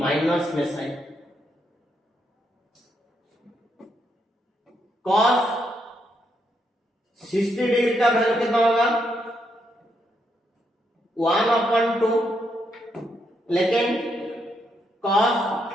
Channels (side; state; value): both; normal; correlation 0.78